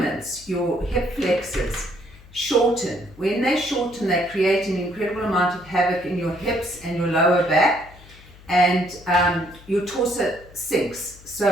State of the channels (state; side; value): noise; left; hum, 22 dB below the sound